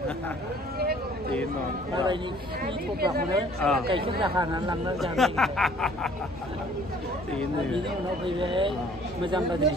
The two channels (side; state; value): both; normal; correlation 0.56